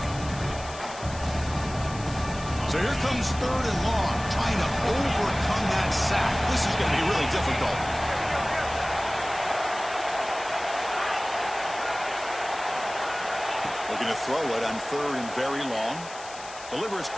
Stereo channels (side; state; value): left; noise; hiss, 15 dB below the sound